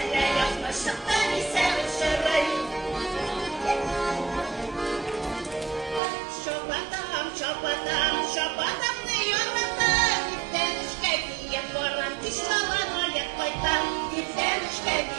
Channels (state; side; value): drops out; left; at 6.0 s